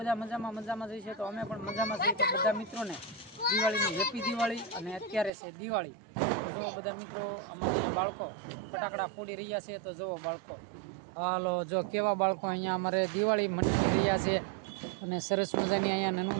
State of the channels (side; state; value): left; drops out; at 5.3 s